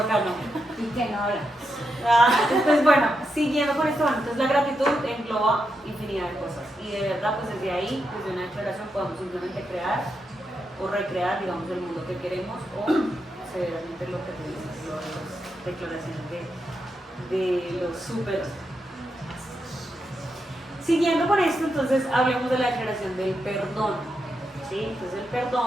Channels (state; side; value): normal; both; correlation 0.84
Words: ¿Y qué no habla? Entonces, bueno, siguiendo con esto, entonces la gratitud engloba infinidad de cosas. Y de verdad, pues desde ahí, desde una declaración, podemos simplemente crear o recrear, digamos, el mundo que queremos o severamente lo que tenemos, las declaraciones de los súper. Siguiendo con esto, entonces hablemos de la declaración del perdón. ¿Sí? Entonces el